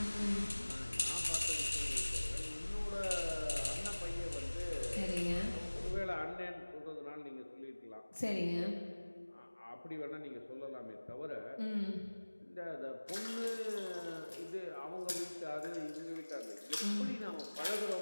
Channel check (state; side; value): inverted; both; correlation -1.00